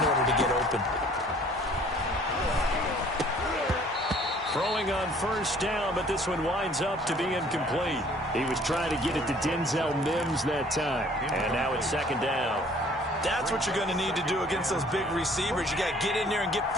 order to get open. Throwing on first down, but this one winds up to be incomplete. He was trying to get it to Denzel Mims that time. And now it's second down. That's what you're going to need to do against those big receivers. You got to get in there and get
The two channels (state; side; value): normal; both; correlation 0.55